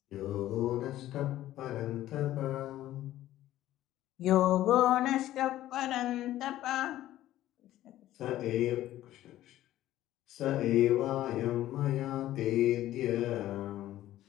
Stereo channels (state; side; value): quieter; right; 14.0 dB